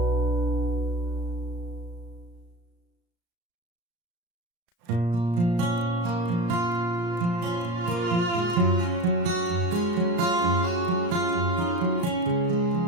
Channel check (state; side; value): late; left; 35 ms